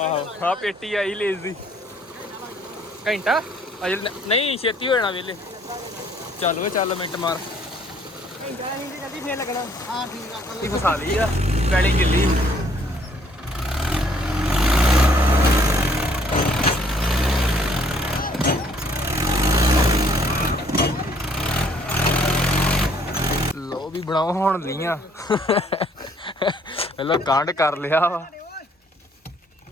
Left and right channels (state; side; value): normal; both; correlation 0.63